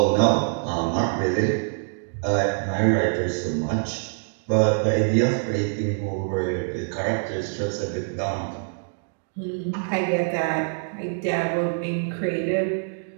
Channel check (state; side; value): silent; left; 62 dB below the other